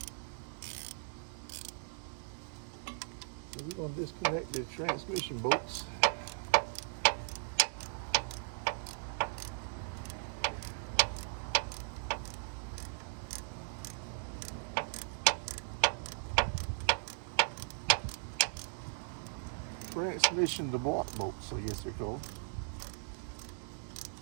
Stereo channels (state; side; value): silent; left; digital silence